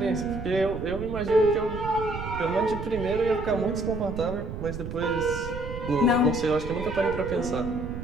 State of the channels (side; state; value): right; noise; rumble, 8 dB below the sound